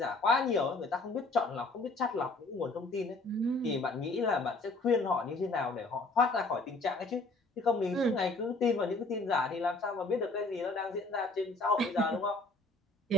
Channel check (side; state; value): right; quieter; 3.1 dB